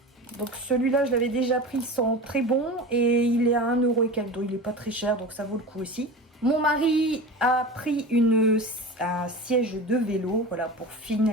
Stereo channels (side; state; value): both; normal; correlation 0.31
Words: Donc celui-là, je l'avais déjà pris, il sent très bon et il est à 1 € et quelques, donc il n'est pas très cher, donc ça vaut le coup aussi. Mon mari a pris un siège de vélo, voilà, pour